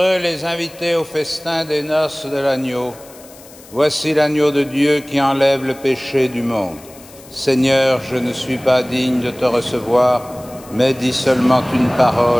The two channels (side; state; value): left; noise; hiss, 22 dB below the sound